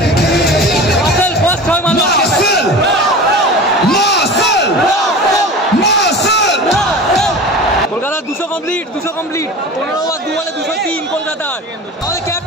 রাসেল ফার্স্ট 6 মারলো। Marcel Marcel Marcel. কলকাতার 200 কমপ্লিট, 200 কমপ্লিট। 15 ওভার 2 বলে 203 কলকাতার। আমাদের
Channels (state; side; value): normal; both; correlation 0.34